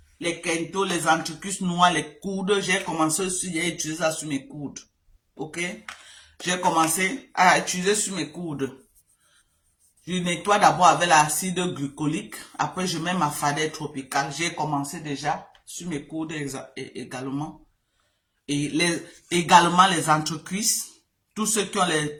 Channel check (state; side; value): identical; both; correlation 1.00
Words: Les Kento, les anticus noirs, les coudes. J'ai commencé aussi à utiliser ça sur mes coudes. Ok? J'ai commencé à utiliser sur mes coudes. Je nettoie d'abord avec l'acide glycolique. Après, je mets ma fadette tropicale. J'ai commencé déjà sur mes coudes également. Et également les entrecuisses. Tous ceux qui ont les